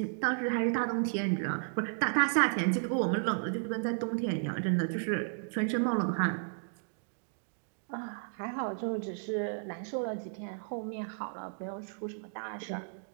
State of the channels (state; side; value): silent; left; digital silence